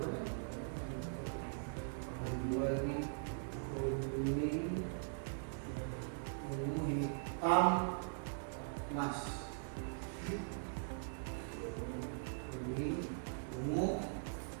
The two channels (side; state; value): left; silent; digital silence